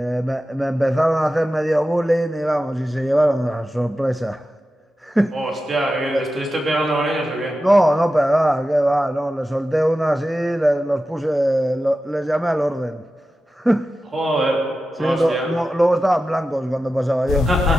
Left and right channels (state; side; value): normal; both; correlation 0.93